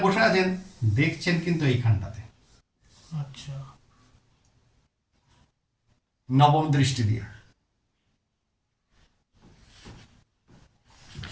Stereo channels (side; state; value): both; identical; correlation 1.00